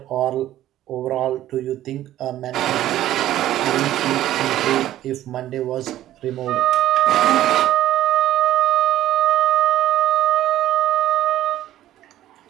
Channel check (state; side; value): quieter; left; 13.4 dB